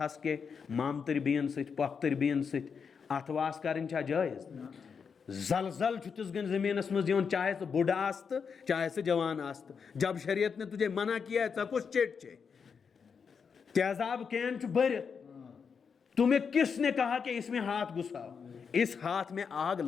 کے مامتر بین ست پختر بین ست اتواس کرن چھا جائز؟ زلزل چھتس گن زمینس مز دیون، چاہے تو بوڑھا آست چاہے سے جوان آست، جب شریعت نے تجھے منع کیا ہے تو کچھ چیٹ چھے، تیزاب کین چھ برت، تمہیں کس نے کہا کہ اس میں ہاتھ گھساؤ؟ اس ہاتھ میں آگ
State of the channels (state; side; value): quieter; right; 6.1 dB